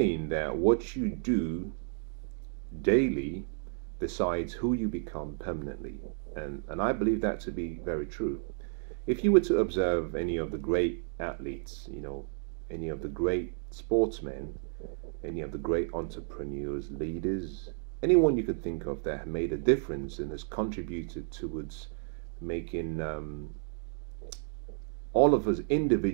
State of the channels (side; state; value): left; silent; digital silence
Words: that what you do daily decides who you become permanently, and I believe that to be very true. If you were to observe any of the great athletes, any of the great sportsmen, any of the great entrepreneurs, leaders, anyone you could think of that have made a difference and has contributed towards making all of us